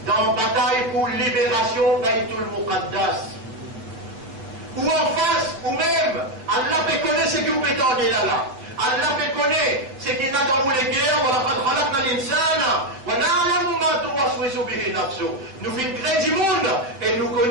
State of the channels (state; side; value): late; left; 7.7 ms